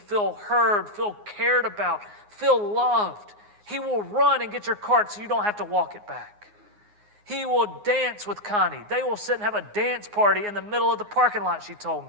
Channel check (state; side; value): late; left; 9.6 ms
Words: heard, feel cared about, feel loved. He will run and get your cart so you don't have to walk it back. He will dance with Connie. They will sit and have a dance party in the middle of the parking lot, she told